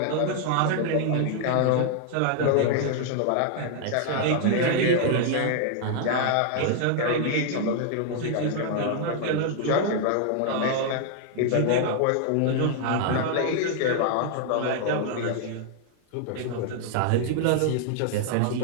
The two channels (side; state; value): both; different; correlation 0.00